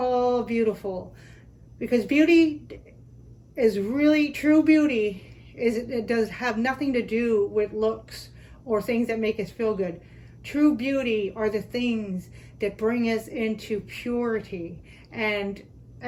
beautiful. Because beauty is really, true beauty it does have nothing to do with looks or things that make us feel good. True beauty are the things that bring us into purity and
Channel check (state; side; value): identical; both; correlation 1.00